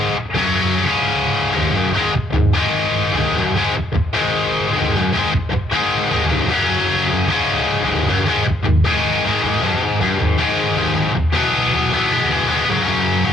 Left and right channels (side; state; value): both; normal; correlation 0.72